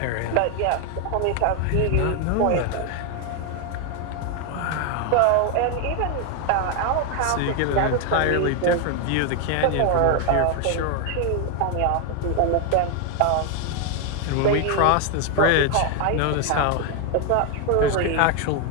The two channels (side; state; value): both; different; correlation 0.01